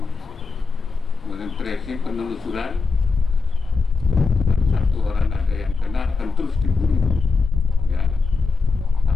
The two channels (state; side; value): quieter; right; 4.6 dB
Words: kemudian tracing, penelusuran. Satu orang ada yang kena akan terus diburu